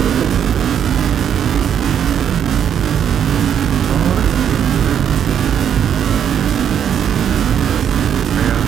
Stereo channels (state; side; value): quieter; left; 8.9 dB